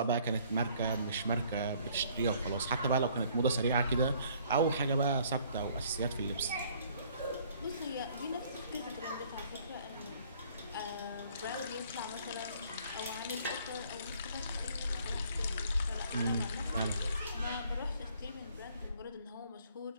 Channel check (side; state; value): both; inverted; correlation -0.59